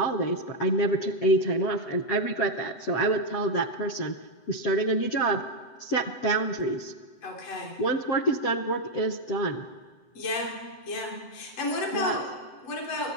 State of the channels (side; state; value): right; late; 7.8 ms